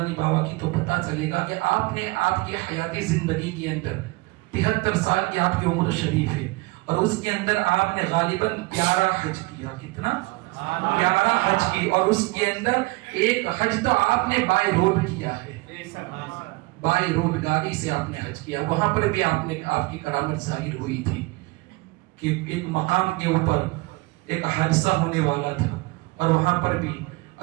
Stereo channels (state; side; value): quieter; left; 23.9 dB